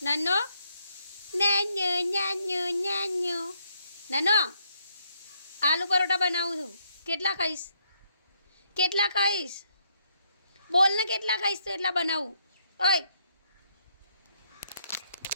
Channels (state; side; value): inverted; both; correlation -0.73